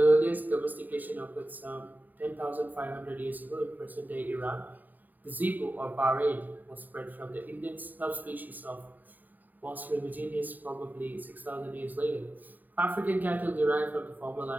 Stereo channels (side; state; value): left; late; 0.086 ms